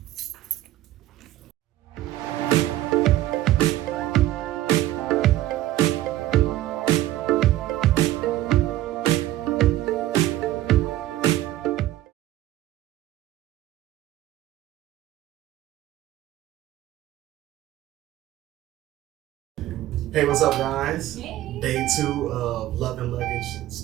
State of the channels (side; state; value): left; quieter; 14.6 dB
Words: Hey, what's up, guys? Hey. Day 2 of Love and Luggage